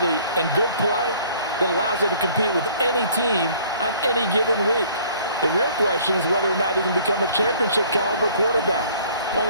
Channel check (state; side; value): inverted; both; correlation -0.55